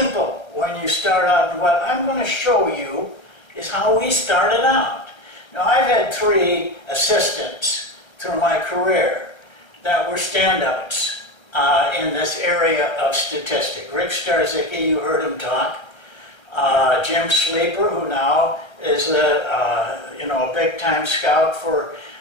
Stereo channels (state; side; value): late; right; 1.3 ms